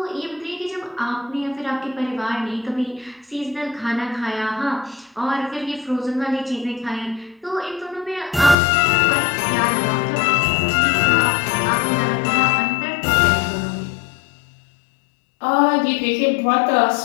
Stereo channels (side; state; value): right; drops out; at 8.6 s